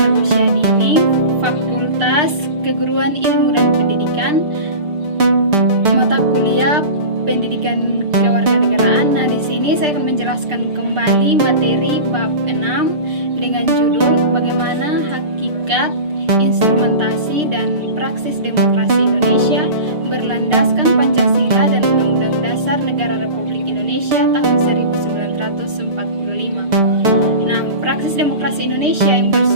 Usia Dini, Fakultas Keguruan Ilmu dan Pendidikan, mata kuliah Pendidikan Kewarganegaraan. Nah, di sini saya akan menjelaskan kembali materi bab 6 dengan judul bagaimana hakikat, instrumentasi dan praksis demokrasi Indonesia berlandaskan Pancasila dan Undang-Undang Dasar Negara Republik Indonesia tahun 1945. Nah, praksis demokrasi Indonesia yang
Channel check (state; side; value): late; left; 6.7 ms